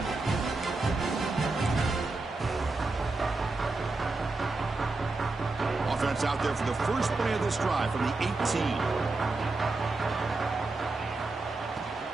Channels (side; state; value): left; quieter; 3.4 dB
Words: Offense out there for the first play of this drive from the 18.